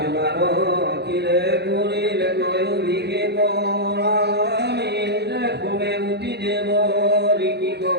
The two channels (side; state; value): left; late; 0.48 ms